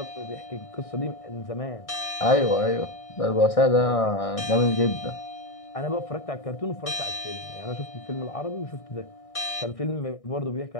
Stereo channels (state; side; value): late; right; 1.6 ms